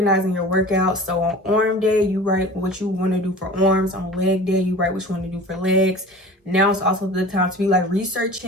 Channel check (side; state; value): both; normal; correlation 0.40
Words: your workouts. So on arm day, you write what you want to do for arms. On leg day, you write what you want to do for legs. Now it's also the time to be like